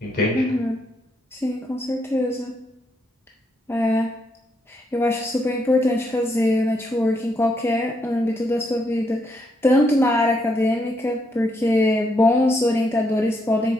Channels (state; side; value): normal; both; correlation 0.77